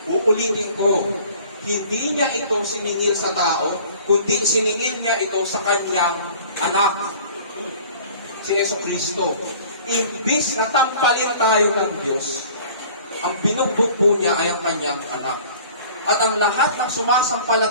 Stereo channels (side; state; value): both; inverted; correlation -0.48